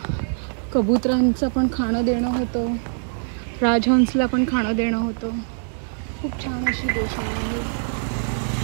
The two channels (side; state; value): left; silent; 63 dB below the other